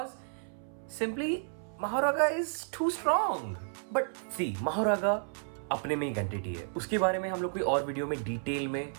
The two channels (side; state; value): left; silent; 56 dB below the other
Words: simply Mahoraga is too strong. But see, Mahoraga अपने में एक एंटिटी है, उसके बारे में हम लोग कोई और वीडियो में डिटेल में